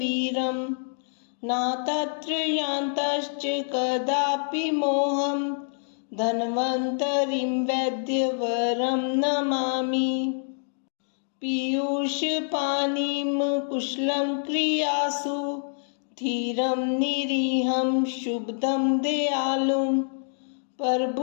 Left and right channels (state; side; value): silent; right; digital silence